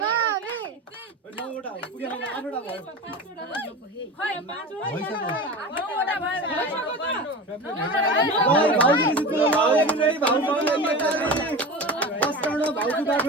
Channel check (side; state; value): both; normal; correlation 0.30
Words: नौवटा पुगेन आठवटा भयो